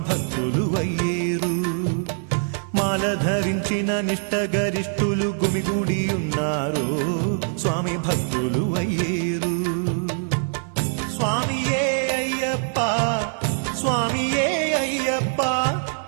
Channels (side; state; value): left; silent; 62 dB below the other